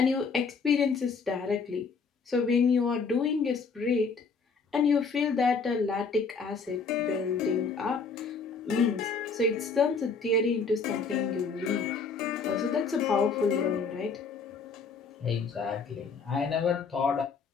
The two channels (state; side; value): quieter; right; 5.0 dB